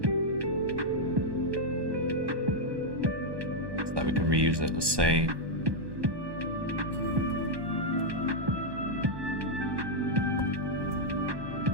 reuse it. Let's say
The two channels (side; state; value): left; late; 1.2 ms